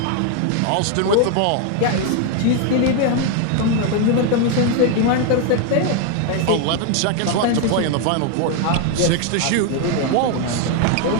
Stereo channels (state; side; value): different; both; correlation 0.01